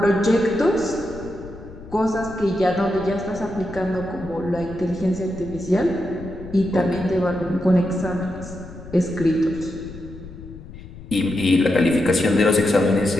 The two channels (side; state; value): left; noise; rumble, 15 dB below the sound